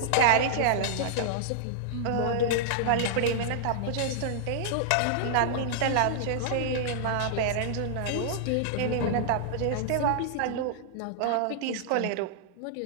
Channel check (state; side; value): different; both; correlation -0.01